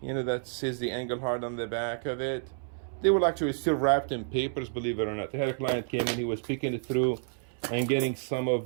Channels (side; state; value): left; silent; 58 dB below the other